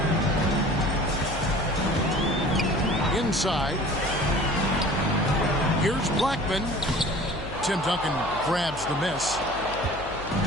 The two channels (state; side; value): noise; left; hum, 14 dB below the sound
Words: Inside. Here's Blackman. Tim Duncan grabs the miss.